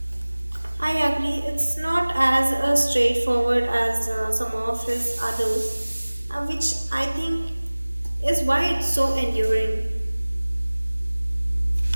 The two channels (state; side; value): inverted; both; correlation -1.00